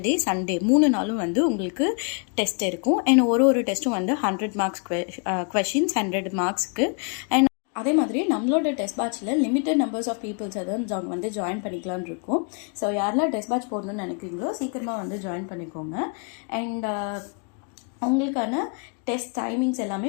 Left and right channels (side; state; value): right; quieter; 39.2 dB